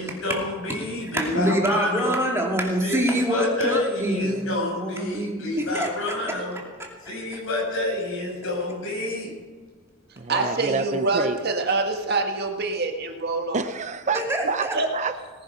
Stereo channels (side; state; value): both; normal; correlation 0.18